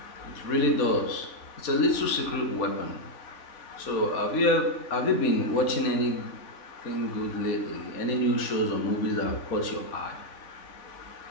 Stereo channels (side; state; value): right; late; 3.5 ms